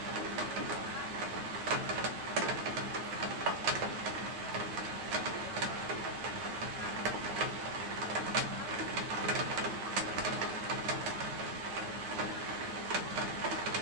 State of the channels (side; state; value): left; late; 8.9 ms